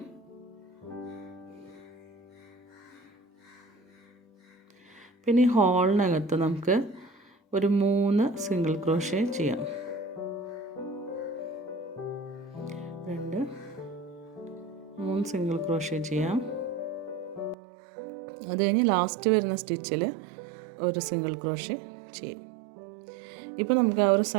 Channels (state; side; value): drops out; left; at 17.6 s